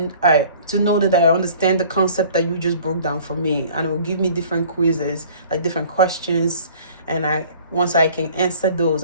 to know that I understand the concept that you just broke down for me, and it will give me different quizzes, like different questions, and once I can answer those,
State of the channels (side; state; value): both; inverted; correlation -0.50